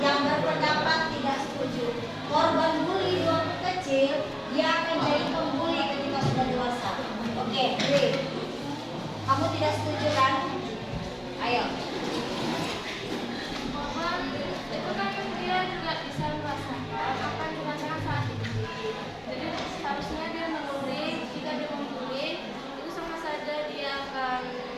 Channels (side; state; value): both; identical; correlation 1.00